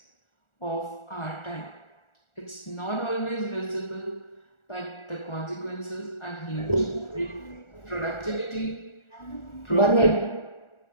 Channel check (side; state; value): right; late; 1.4 ms